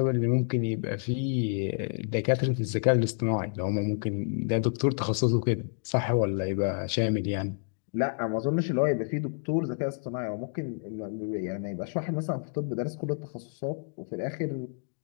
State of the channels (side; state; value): right; silent; digital silence